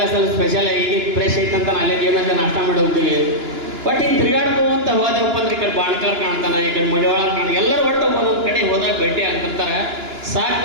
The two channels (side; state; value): left; late; 2.9 ms